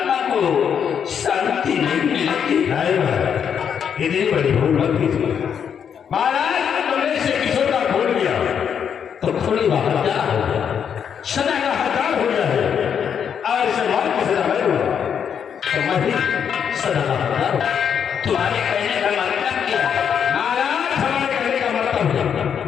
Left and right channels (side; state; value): right; quieter; 7.8 dB